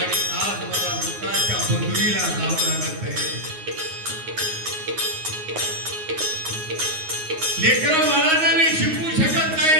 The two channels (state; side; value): late; left; 9.5 ms